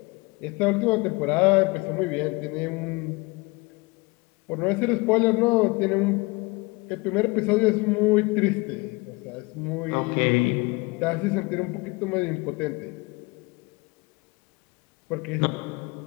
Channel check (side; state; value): right; quieter; 25.4 dB